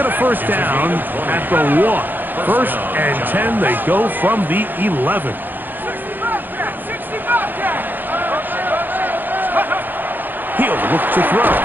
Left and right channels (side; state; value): left; late; 0.089 ms